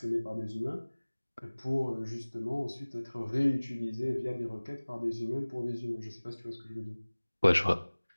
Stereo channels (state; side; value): inverted; both; correlation -1.00